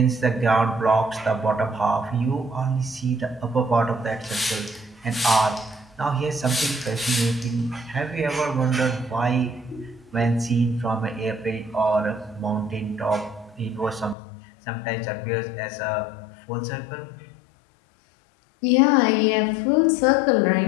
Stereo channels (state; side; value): drops out; right; at 14.2 s